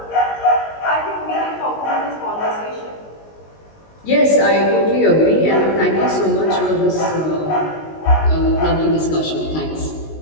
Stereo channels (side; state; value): right; late; 19 ms